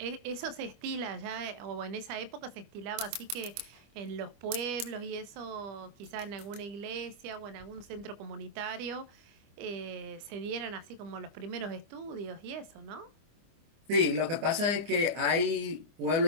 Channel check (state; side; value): late; left; 25 ms